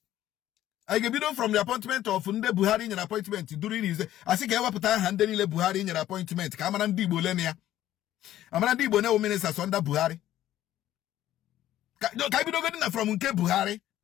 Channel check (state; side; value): quieter; right; 13.1 dB